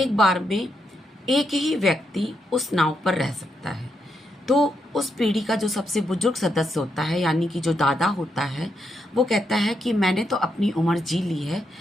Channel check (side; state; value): both; normal; correlation 0.81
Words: बार में एक ही व्यक्ति उस नाव पर रह सकता है। तो उस पीढ़ी का जो सबसे बुजुर्ग सदस्य होता है यानी कि जो दादा होता है, वो कहता है कि मैंने तो अपनी उम्र जी ली है,